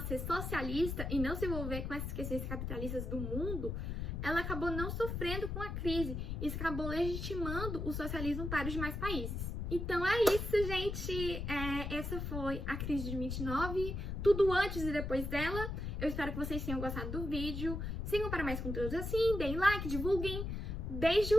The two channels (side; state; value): left; noise; rumble, 4 dB below the sound